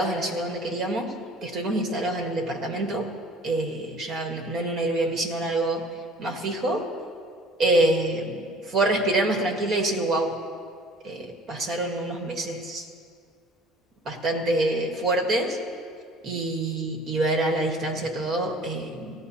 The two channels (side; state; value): both; normal; correlation 0.48